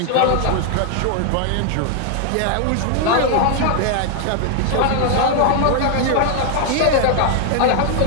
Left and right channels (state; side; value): different; both; correlation 0.00